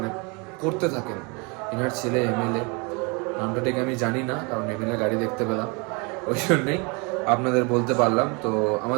করতে থাকেন। এনার ছেলে এমএলএ, নামটা ঠিক আমি জানি না, কারণ এমএলএ গাড়ি দেখতে পেলাম, ওই জন্যই আপনাদের বলতে পারলাম। তো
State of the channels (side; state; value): left; quieter; 30.6 dB